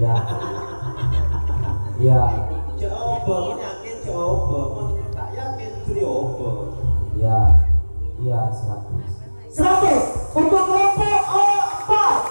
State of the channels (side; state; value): both; inverted; correlation -1.00